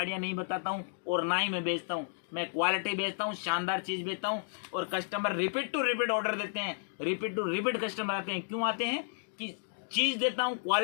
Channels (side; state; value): right; silent; digital silence